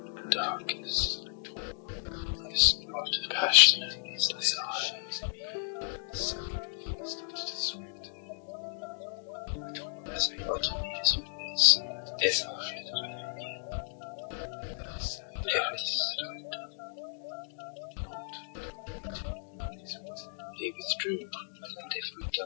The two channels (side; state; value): right; silent; digital silence